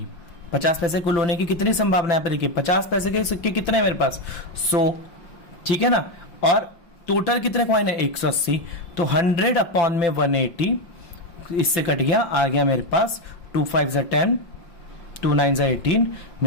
50 पैसे कुल होने की कितनी संभावना है? यहाँ पे देखिए 50 पैसे के सिक्के कितने हैं मेरे पास? 100, ठीक है ना। और टोटल कितने कॉइन है? 180। तो 100 अपॉन में 180, इससे कट गया, आ गया मेरे पास 2 5 10, 2 9 18।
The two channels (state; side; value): late; right; 5.9 ms